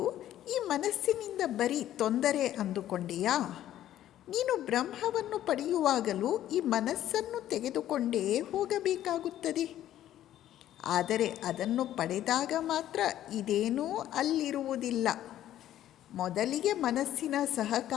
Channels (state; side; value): quieter; right; 12.4 dB